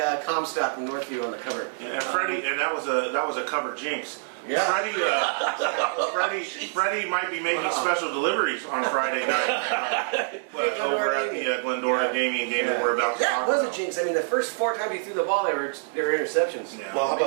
Comstock from Northview on the cover. Yeah, and Freddie, and that was a cover jinx. Yeah. Freddie might be making special deliveries on Friday night over at the Glendora Damien game that we're about to talk about. That was a jinx. I mean, the first 4 times he threw the ball, they were interceptions. Yeah. Well, how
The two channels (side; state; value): left; silent; 61 dB below the other